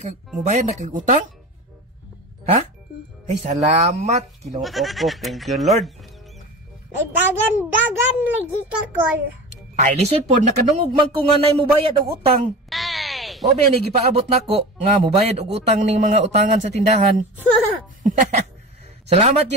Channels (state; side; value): normal; both; correlation 0.31